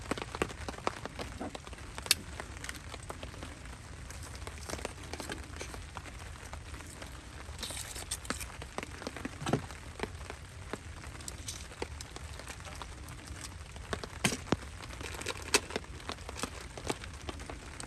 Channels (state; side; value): identical; both; correlation 1.00